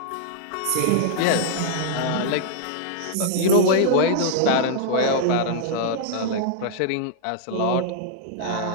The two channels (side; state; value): both; different; correlation -0.01